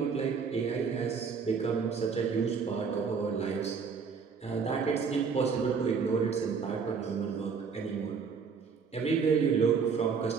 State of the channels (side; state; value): left; quieter; 5.7 dB